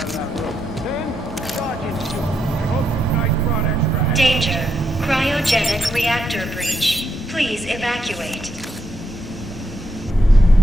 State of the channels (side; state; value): both; normal; correlation 0.80